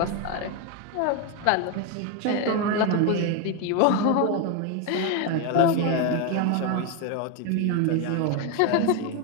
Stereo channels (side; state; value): both; different; correlation 0.02